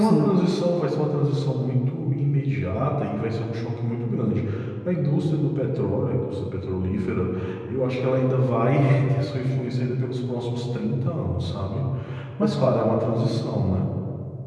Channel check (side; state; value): both; identical; correlation 1.00